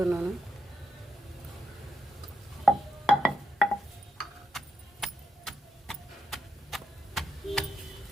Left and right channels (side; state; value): both; normal; correlation 0.83